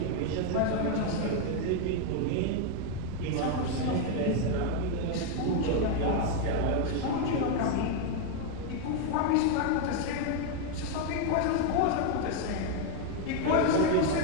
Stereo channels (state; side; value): different; both; correlation 0.01